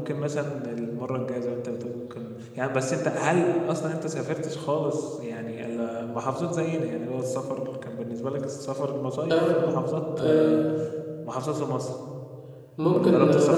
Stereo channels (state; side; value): identical; both; correlation 1.00